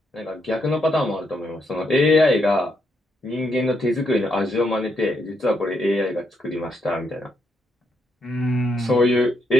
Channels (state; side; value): normal; both; correlation 0.78